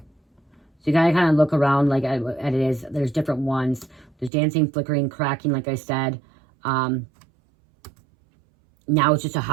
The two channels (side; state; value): left; drops out; at 4.3 s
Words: So you gotta kind of look around like at it is. There's different ones. There's dancing, flickering, cracking, like I said. Now it's just a